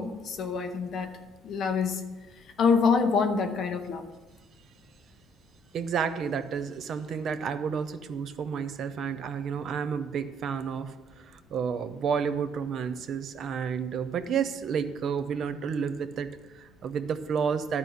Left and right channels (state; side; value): normal; both; correlation 0.64